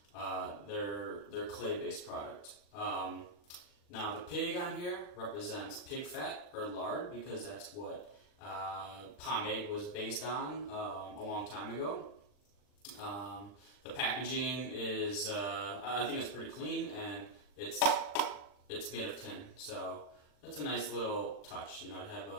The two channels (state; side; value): late; right; 39 ms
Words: their clay-based product. Now the pig on here represents pig fat or lard because that's what Pomade was based on a long time ago. The packaging is, I think it's pretty clean, and it's made of tin, so it's a nice little touch, you know, to have